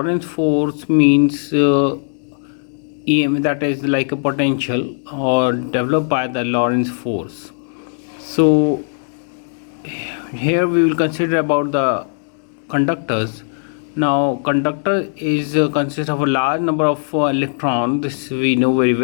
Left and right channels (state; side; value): silent; right; 67 dB below the other